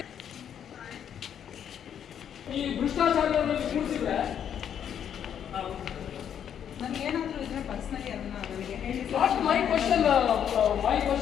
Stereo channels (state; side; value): quieter; right; 9.0 dB